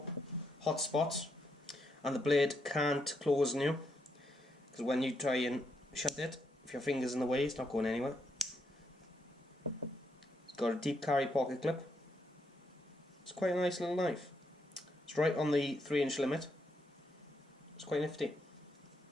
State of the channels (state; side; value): normal; both; correlation 0.78